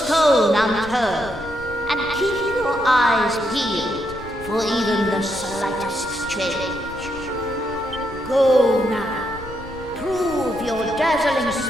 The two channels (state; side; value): noise; left; rumble, 16 dB below the sound